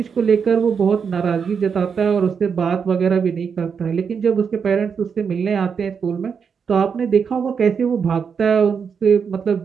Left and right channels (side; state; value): left; quieter; 6.4 dB